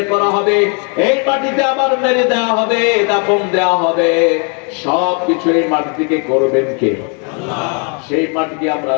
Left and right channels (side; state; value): right; quieter; 37.9 dB